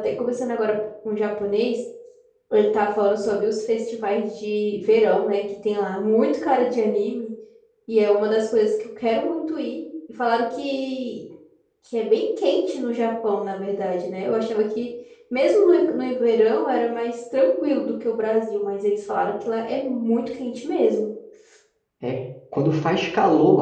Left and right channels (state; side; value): identical; both; correlation 1.00